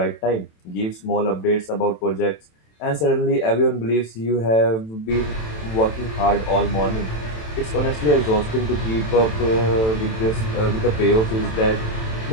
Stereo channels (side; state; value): right; late; 27 ms